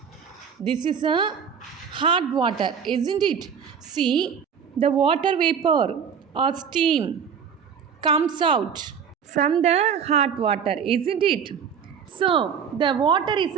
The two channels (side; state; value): left; quieter; 7.2 dB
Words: This is a hot water, isn't it? See, the water vapor or steam comes out from the hot water, isn't it? So, the water is